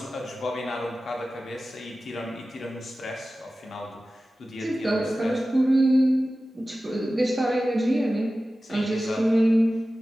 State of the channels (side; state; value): both; normal; correlation 0.95